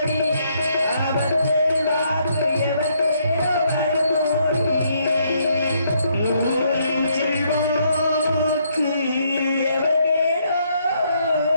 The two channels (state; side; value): inverted; both; correlation -0.72